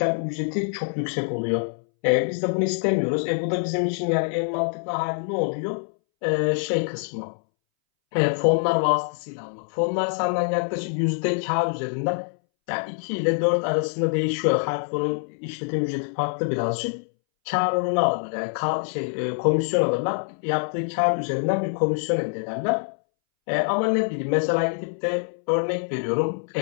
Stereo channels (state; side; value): silent; right; 62 dB below the other